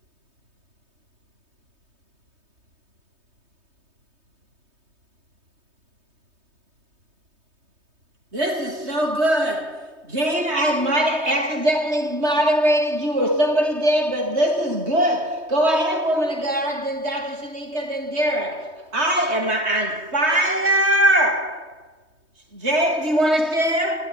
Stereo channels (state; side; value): late; left; 3.2 ms